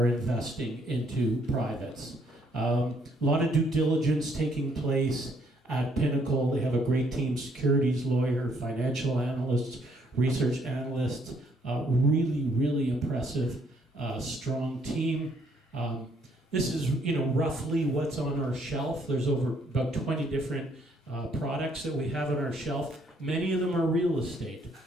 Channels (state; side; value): normal; both; correlation 0.68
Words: investing into privates. A lot of due diligence taking place at Pinnacle. They have a great team, securities lawyer, financial analysts, research analysts, really, really impressive, strong team. This is, roughly what's on our shelf. There's about 20 different products that we have on our shelf. Many of them are real estate.